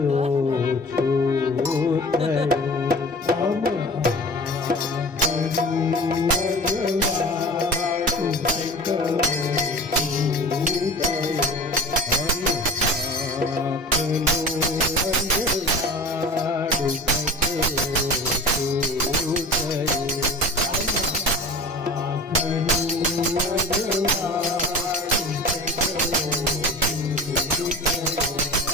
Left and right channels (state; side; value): normal; both; correlation 0.37